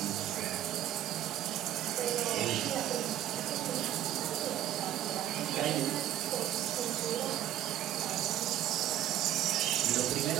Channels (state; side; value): quieter; left; 12.3 dB